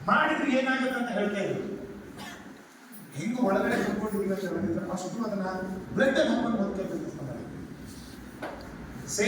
ಮಾಡಿದ್ರೆ ಏನಾಗುತ್ತೆ ಅಂತ ಹೇಳ್ತಾ ಇದ್ರು. ಹಿಂಗು ಒಳಗಡೆ ಕುತ್ಕೊಂಡಿದ್ದೀವಿ ಅಂತ ಹೇಳಿದ್ರೆ ಅಷ್ಟು ಅದನ್ನ ಬ್ಲಡ್ ಅಲ್ಲಿ ಹಾಕೊಂಡು ಓದ್ತಾ ಬಿಸ್ನೆಸ್ ಮಾಡಿ.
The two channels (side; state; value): both; identical; correlation 1.00